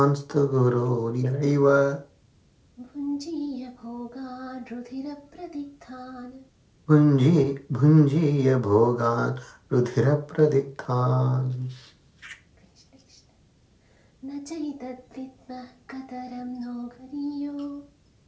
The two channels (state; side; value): identical; both; correlation 1.00